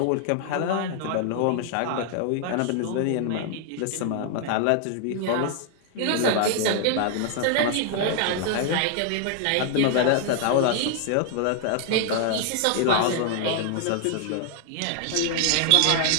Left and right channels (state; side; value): different; both; correlation 0.00